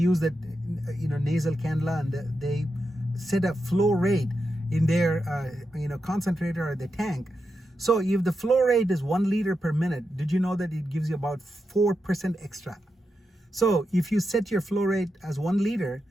that nasal cannula, and they set a flow rate in their concentrator or the tank. So if the flow rate is 1 liter per minute, did you know that it gives you about 4% extra? So if you set your flow rate as 1 liter,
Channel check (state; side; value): normal; both; correlation 0.87